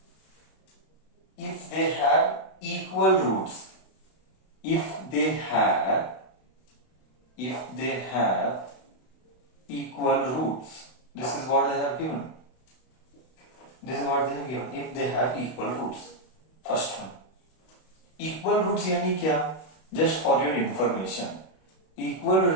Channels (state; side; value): late; right; 32 ms